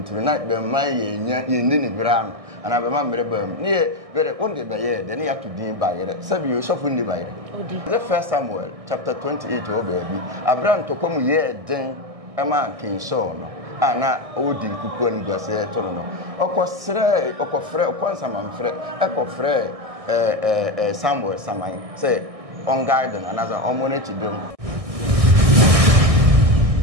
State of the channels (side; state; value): left; late; 1.6 ms